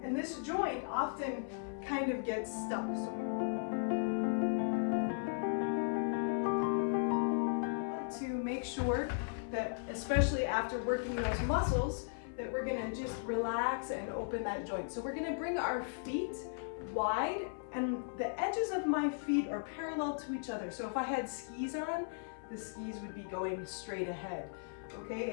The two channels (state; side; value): silent; right; 53 dB below the other